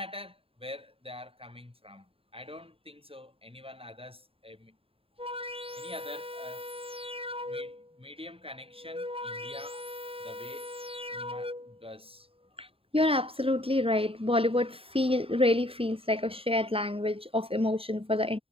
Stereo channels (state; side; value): late; left; 0.27 ms